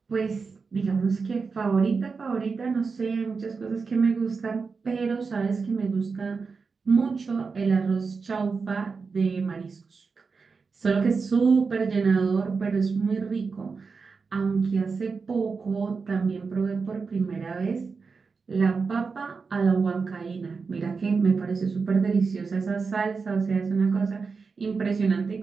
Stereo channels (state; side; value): quieter; left; 4.9 dB